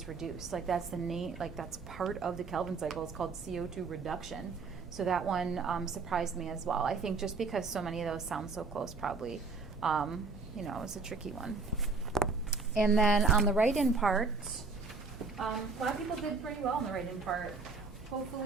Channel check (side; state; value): left; quieter; 4.3 dB